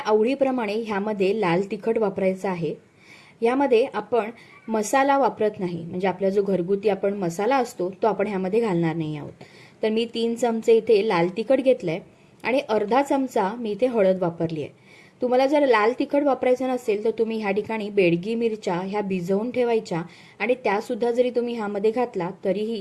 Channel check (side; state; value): both; identical; correlation 1.00